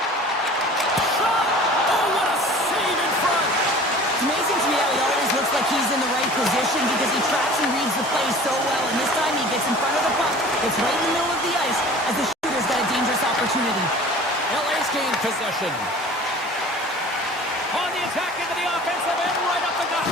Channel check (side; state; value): both; normal; correlation 0.44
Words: Shot. Oh, what a save in front. It's amazing to me how he always looks like he's in the right position because he tracks and reads the play so well. And this time he gets in front of the puck. It's right in the middle of the ice as the shooter's got a dangerous opportunity. LA's gained possession. On the attack into the offensive end, right up the gut.